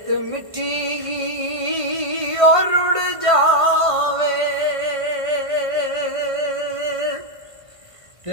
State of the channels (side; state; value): left; late; 1.5 ms